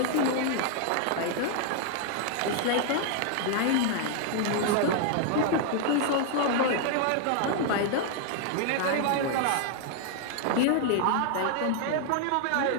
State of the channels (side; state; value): both; different; correlation 0.00